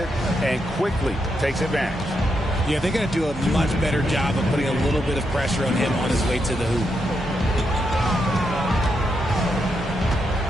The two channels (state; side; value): normal; both; correlation 0.82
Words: and quickly takes advantage. Yeah, they're going to do a much better job of putting a little bit of pressure on him on his way to the hoop.